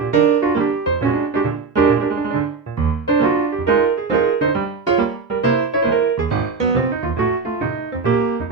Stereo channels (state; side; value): quieter; left; 4.6 dB